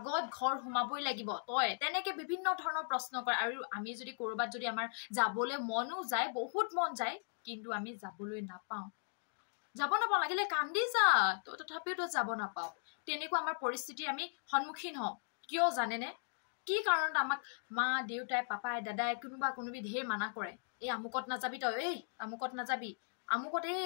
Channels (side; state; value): right; silent; digital silence